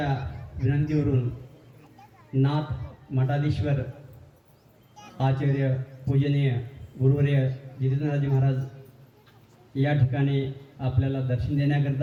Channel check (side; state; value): both; identical; correlation 1.00